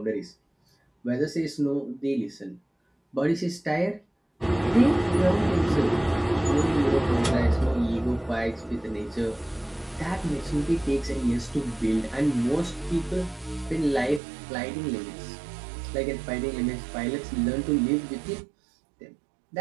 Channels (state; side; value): drops out; left; at 14.2 s